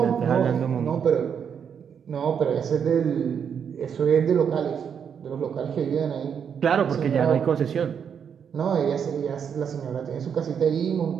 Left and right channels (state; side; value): quieter; left; 7.5 dB